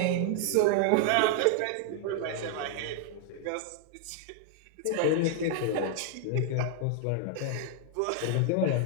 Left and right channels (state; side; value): different; both; correlation 0.00